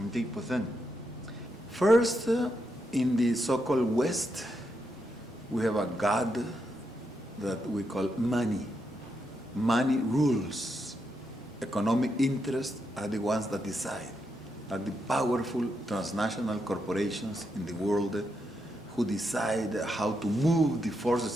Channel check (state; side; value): normal; both; correlation 0.82